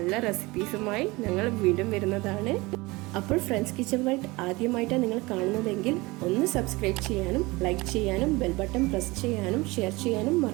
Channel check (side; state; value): left; quieter; 22.8 dB